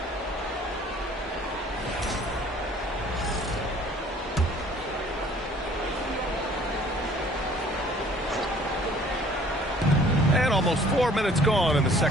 And almost 4 minutes gone in the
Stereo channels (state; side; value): normal; both; correlation 0.54